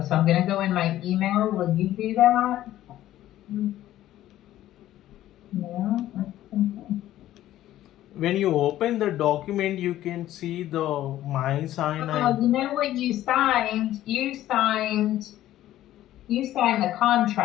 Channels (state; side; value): quieter; right; 13.6 dB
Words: so I'm gonna go in my email. Will you do that? No? Okay. When you open the document, you can see the my sign. Oh, you know what you signed? You signed the